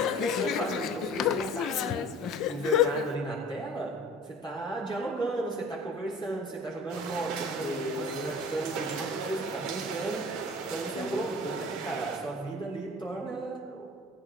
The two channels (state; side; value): normal; both; correlation 0.44